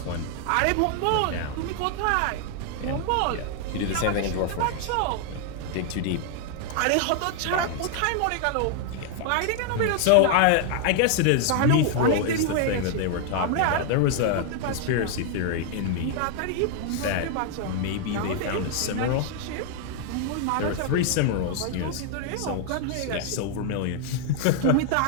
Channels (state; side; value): different; both; correlation 0.00